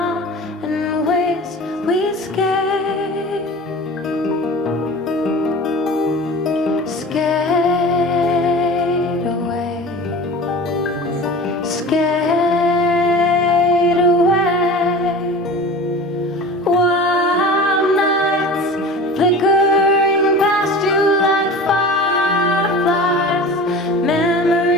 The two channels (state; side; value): normal; both; correlation 0.37